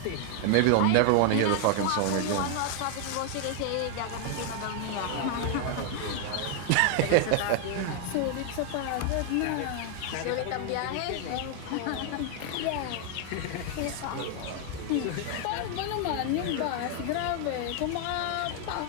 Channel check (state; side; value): different; both; correlation 0.00